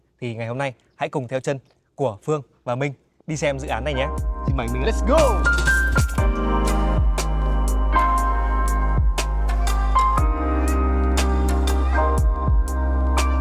Thì ngày hôm nay hãy cùng theo chân của Phương và Minh đi xem dự án này nhé. Xin mời Minh. Let's go!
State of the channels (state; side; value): identical; both; correlation 1.00